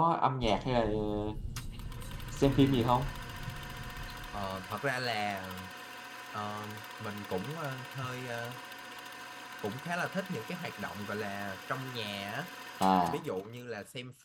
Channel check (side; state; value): both; identical; correlation 1.00